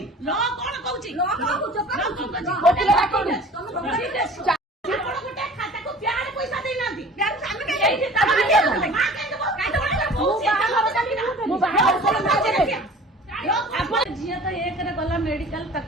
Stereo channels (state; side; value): normal; both; correlation 0.44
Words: झील तो एक गला मेडिकल